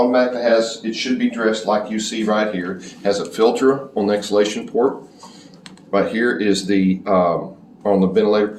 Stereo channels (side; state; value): both; identical; correlation 1.00